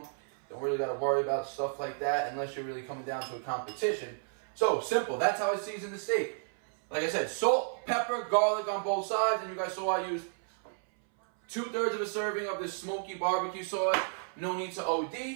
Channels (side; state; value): left; silent; 56 dB below the other